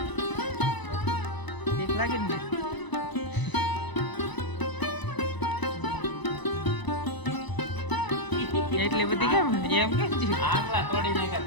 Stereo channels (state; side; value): late; right; 1.0 ms